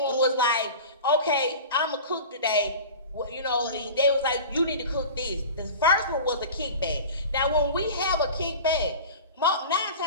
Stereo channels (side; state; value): both; inverted; correlation -0.35